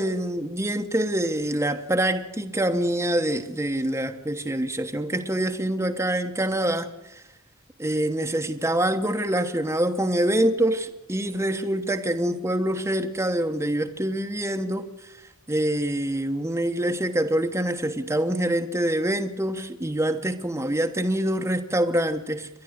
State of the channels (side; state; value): both; normal; correlation 0.72